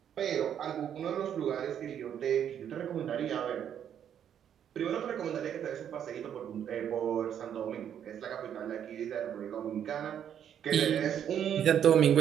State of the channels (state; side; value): quieter; left; 9.3 dB